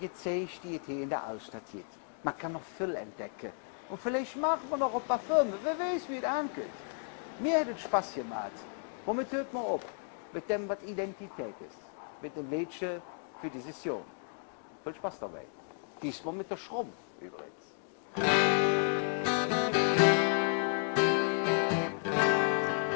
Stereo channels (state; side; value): silent; right; 55 dB below the other